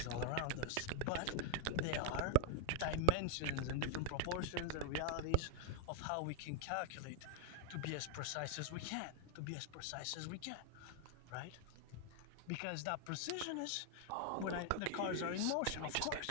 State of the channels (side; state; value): both; different; correlation 0.00